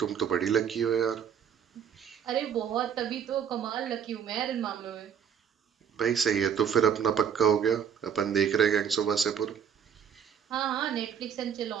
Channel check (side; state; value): left; quieter; 7.9 dB